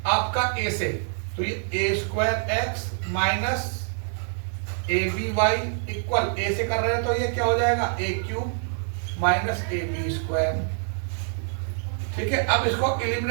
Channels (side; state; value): left; silent; 58 dB below the other